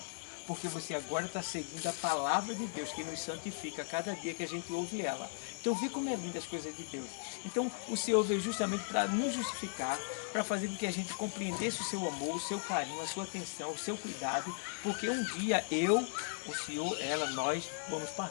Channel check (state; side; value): silent; right; digital silence